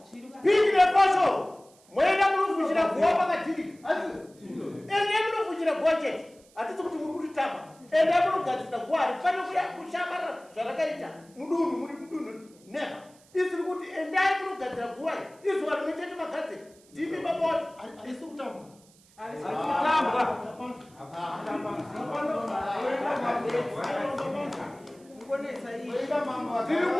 Piki nepasho mwoenda munofushira guwa pakadhirika. Asi ende munofushira guwa chete. Hatisi kuti muri kutitamba. Ende munogadzisa guwa harifani kushambarara zvarakaita mudunhu muri mudunhu. Never. Isiri kuti endai munogadzira guwa iri. Izuva rimwe chete magadzira. Ndimi baba wacho. Harisi kutamba.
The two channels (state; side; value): noise; right; hiss, 28 dB below the sound